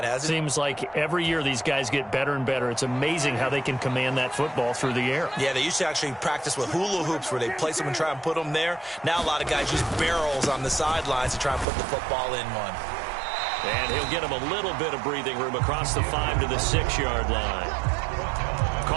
hasn't it? Seems like every year these guys get better and better. It's amazing how they can command that football through the air. Yeah, they used to actually practice with hula hoops where they place them and try and put them there. Now a lot of guys use barrels on the sidelines to try and put the football in one. And he'll get him a little bit of breathing room across the 5 to the 6-yard line.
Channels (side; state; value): left; drops out; at 11.7 s